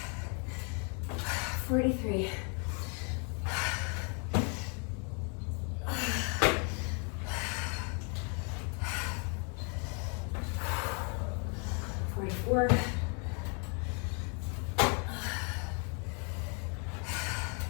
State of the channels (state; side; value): quieter; right; 38.0 dB